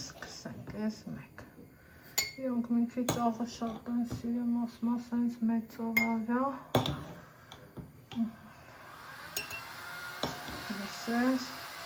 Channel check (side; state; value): both; identical; correlation 1.00